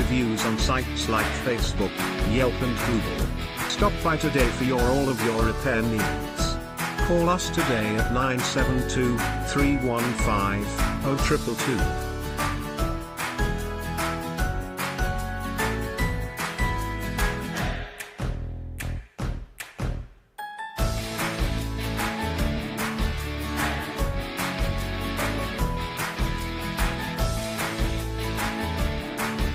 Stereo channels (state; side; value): identical; both; correlation 1.00